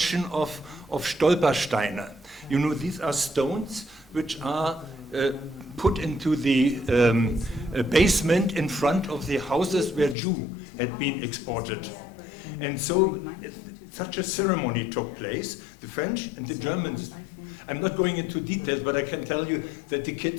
of Stolpersteine. You know, these are stones which are put into the basement in front of the houses where Jew had been exported. And so such a ceremony took place. The French and the Germans, I'm not going into details, but I can tell you that the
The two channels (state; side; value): drops out; right; at 10.2 s